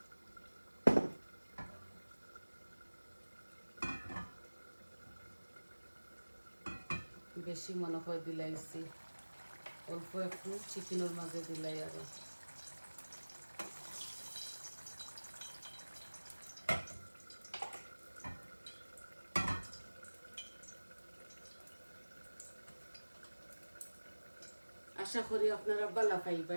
বেশি মনে হয় দিলাইছি, অল্প একটু চিকেনের মাঝে দিলাই আরো। আশা করি আপনারা ভালো পাইবা।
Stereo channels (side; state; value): both; inverted; correlation -1.00